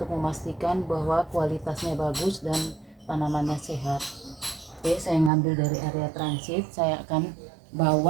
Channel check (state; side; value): drops out; left; at 5.3 s